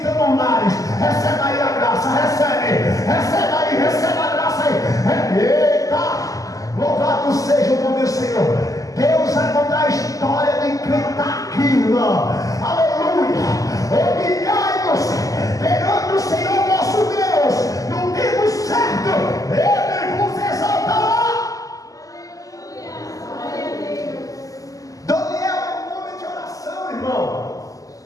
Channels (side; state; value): right; late; 0.17 ms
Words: lares. Recebe aí a graça, recebe a graça aí. Eita! Louvado seja o nome do Senhor. Deus vai mudar a história de quem está aqui, irmão. Aleluia! Humilhai-nos perante o Senhor nosso Deus no tempo certo. Ele vos exaltará. Daniel é um homem de oração, irmão.